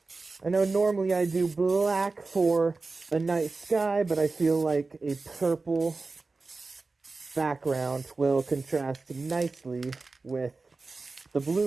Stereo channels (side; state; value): left; quieter; 3.8 dB